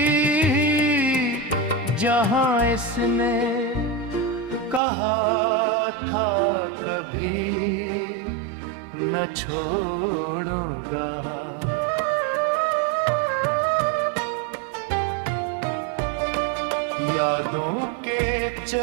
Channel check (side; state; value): left; drops out; at 4.8 s